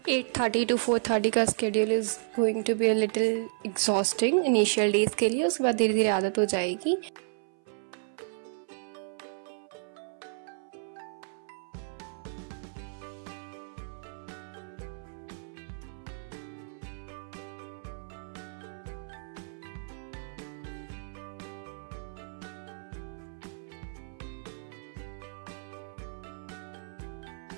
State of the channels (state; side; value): silent; left; 56 dB below the other